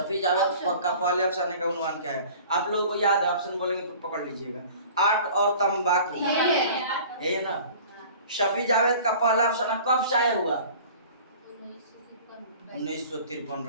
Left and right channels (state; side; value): inverted; both; correlation -0.45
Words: जावेद का पहले अफसाने का उन्वान क्या है? आप लोगों को याद है? ऑप्शन बोलेंगे तो पकड़ लीजिएगा। आर्ट और तंबाकू, है ना। शफी जावेद का पहला अफसाना कब शाये हुआ? 1953।